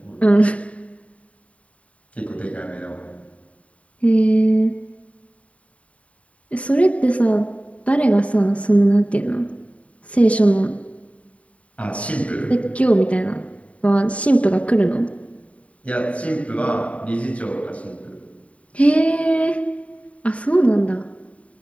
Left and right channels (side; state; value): right; late; 0.066 ms